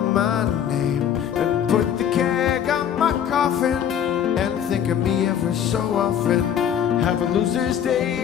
my name and put the keg on my coffin and think of me every so often. Have a loser's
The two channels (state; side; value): quieter; right; 9.2 dB